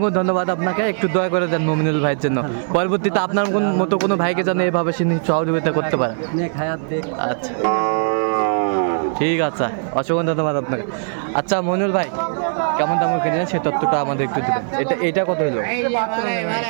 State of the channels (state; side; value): silent; left; 57 dB below the other